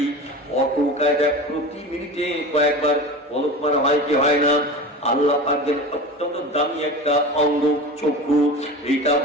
অটো কায়দা প্রতি মিনিটে কয়েকবার পলক মারা হয় কি হয় না? আল্লাহ পাকের অত্যন্ত দামি একটা অঙ্গ চক্ষু, এটা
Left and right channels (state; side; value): normal; both; correlation 0.32